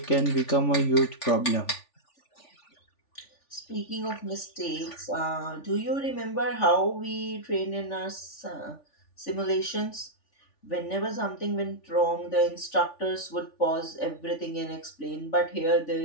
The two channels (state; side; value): late; right; 3.4 ms